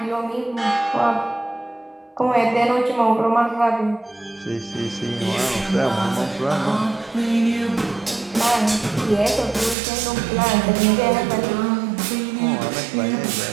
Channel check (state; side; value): drops out; left; at 9.8 s